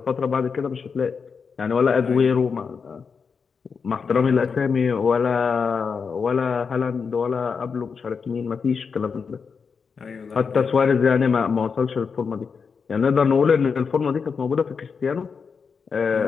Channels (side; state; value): right; quieter; 5.7 dB